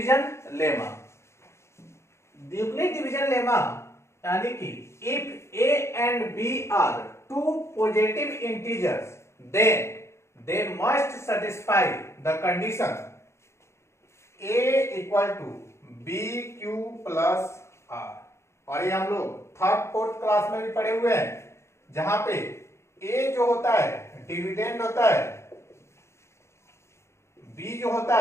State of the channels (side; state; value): right; late; 0.13 ms